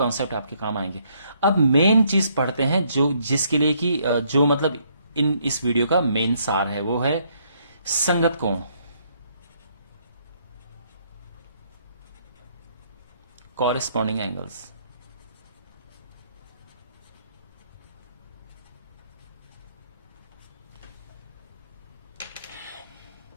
आपके काम आएंगे। अब मेन चीज पढ़ते हैं जो जिसके लिए कि जो मतलब इस वीडियो का मेन सार है, वो है संगत कोण, कॉरेस्पॉन्डिंग एंगल्स।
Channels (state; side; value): inverted; both; correlation -0.69